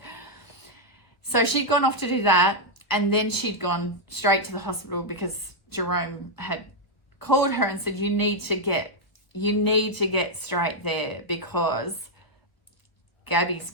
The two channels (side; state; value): right; late; 1.3 ms